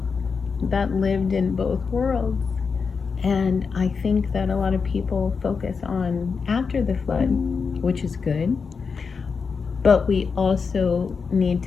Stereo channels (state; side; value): quieter; right; 5.3 dB